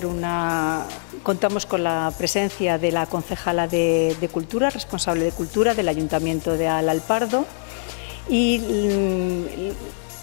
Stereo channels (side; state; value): right; silent; digital silence